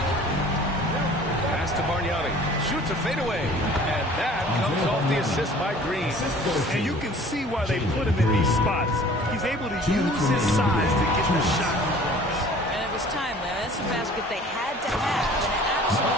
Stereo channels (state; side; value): normal; both; correlation 0.49